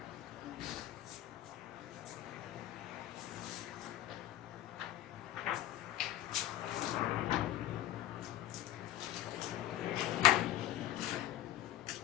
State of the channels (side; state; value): right; quieter; 13.0 dB